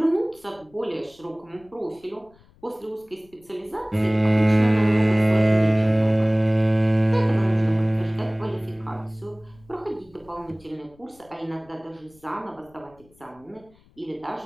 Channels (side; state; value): left; noise; rumble, 29 dB below the sound